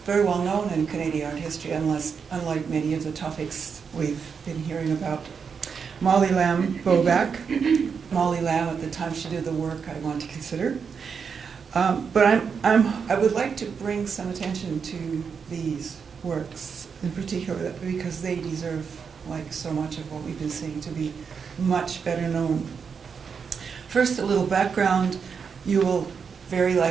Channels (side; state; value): left; quieter; 6.1 dB